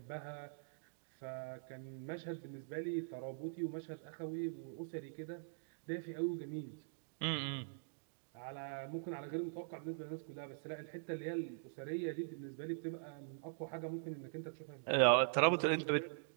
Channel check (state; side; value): silent; left; digital silence